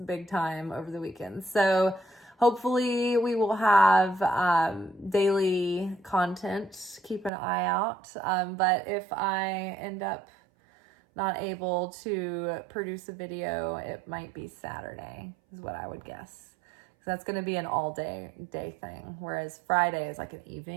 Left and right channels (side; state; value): left; drops out; at 7.3 s